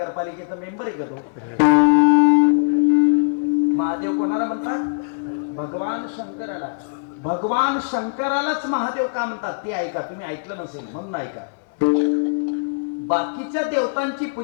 मेंबर आहे का तो? महादेव कोणाला म्हणतात? भगवान शंकराला. भगवान शंकरालाच महादेव का म्हणतात ते ऐका, तुम्ही ऐकलं नसेल म्हणून ऐका. बाकीच्या देवतांची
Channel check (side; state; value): right; quieter; 38.8 dB